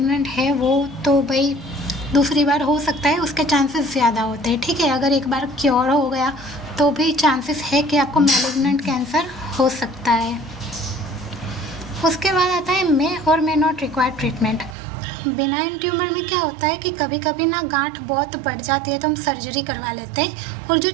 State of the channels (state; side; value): drops out; left; at 14.8 s